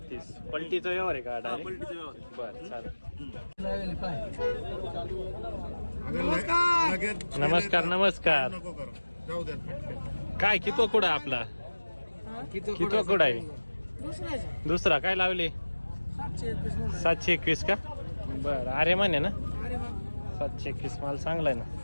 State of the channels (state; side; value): inverted; both; correlation -1.00